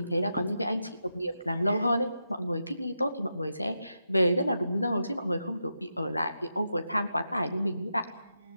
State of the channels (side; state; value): both; inverted; correlation -0.87